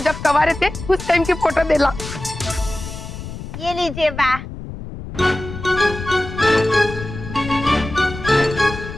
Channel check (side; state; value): left; noise; rumble, 10 dB below the sound